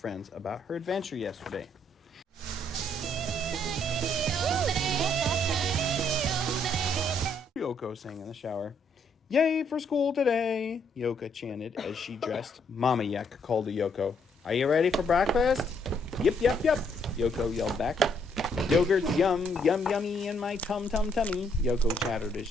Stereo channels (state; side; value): normal; both; correlation 0.70